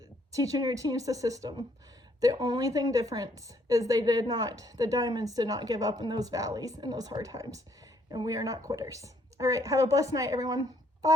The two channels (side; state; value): both; normal; correlation 0.68